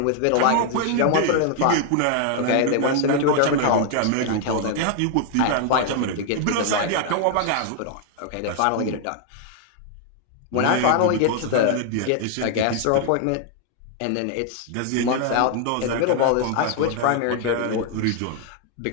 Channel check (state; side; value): different; both; correlation 0.00